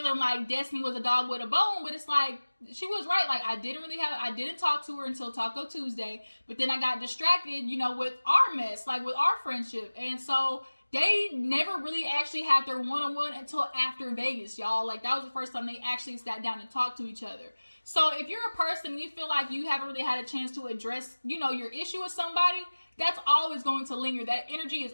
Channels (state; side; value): inverted; both; correlation -1.00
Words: like Destiny was a dog with a bone, but it's like, she was right. Like, I didn't talk to her until Taco Tuesday, but then I got distracted, with our mess, like with our friendship. And so they never really actually had their one-on-one until after Vegas, y'all. Like, that was the first time they actually sat down and talked to each other. So if you're a person, you feel like you haven't really had a chance to address, your issue with somebody, that's always going to linger. That energy is